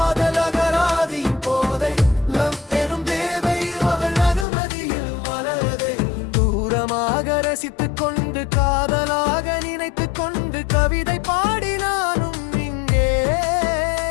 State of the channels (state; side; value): drops out; right; at 4.5 s